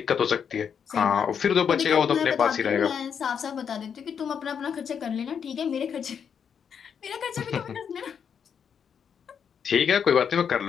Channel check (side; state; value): right; quieter; 7.3 dB